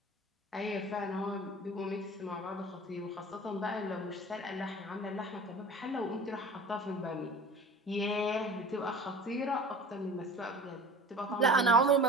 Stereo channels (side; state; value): both; normal; correlation 0.39